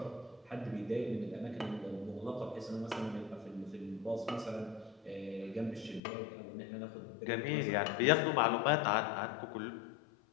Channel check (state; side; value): drops out; right; at 6.0 s